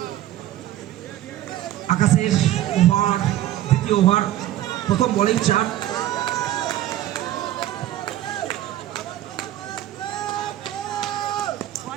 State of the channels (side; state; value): left; quieter; 13.4 dB